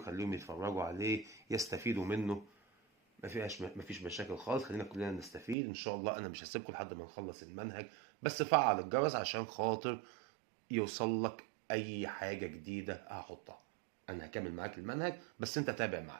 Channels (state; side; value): drops out; left; at 5.6 s